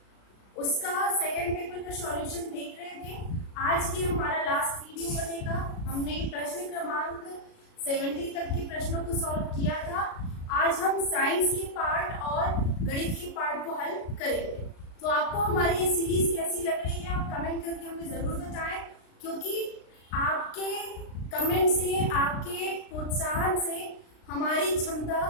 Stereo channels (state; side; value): late; right; 36 ms